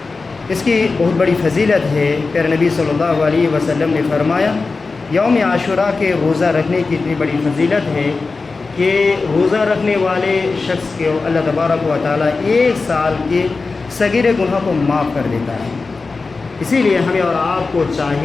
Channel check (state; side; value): quieter; right; 4.0 dB